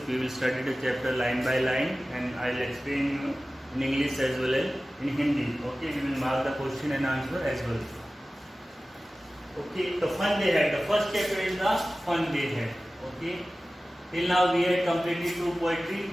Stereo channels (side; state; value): both; normal; correlation 0.96